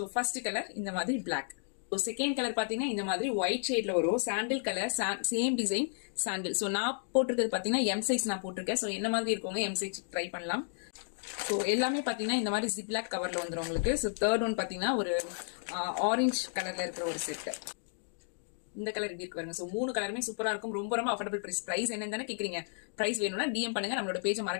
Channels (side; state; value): right; silent; digital silence